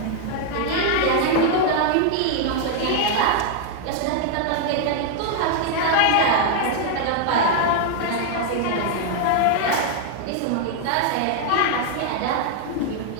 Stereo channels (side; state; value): both; different; correlation 0.00